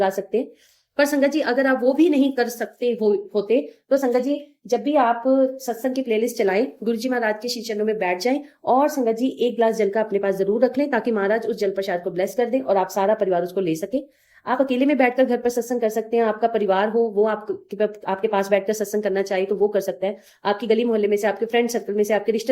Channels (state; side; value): identical; both; correlation 1.00